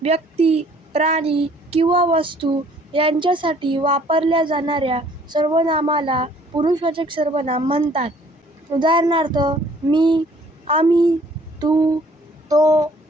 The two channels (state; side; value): normal; both; correlation 0.58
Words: व्यक्ती, प्राणी किंवा वस्तू यांच्यासाठी वापरल्या जाणाऱ्या सर्वनामाला पुरुषवाचक सर्वनाम म्हणतात. उदाहरणार्थ, मी, आम्ही, तू, तो,